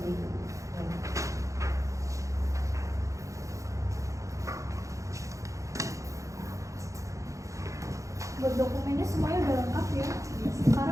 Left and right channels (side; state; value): left; late; 0.15 ms